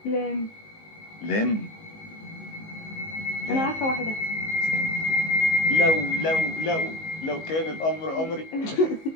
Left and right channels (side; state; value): right; late; 19 ms